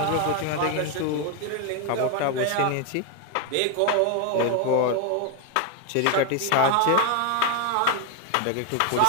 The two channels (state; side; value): different; both; correlation 0.01